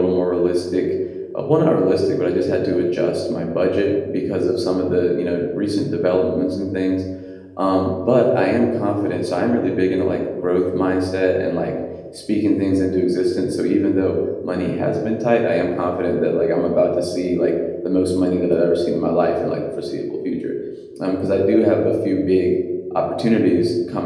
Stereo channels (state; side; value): identical; both; correlation 1.00